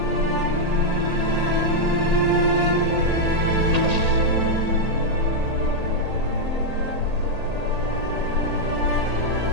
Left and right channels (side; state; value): left; late; 1.8 ms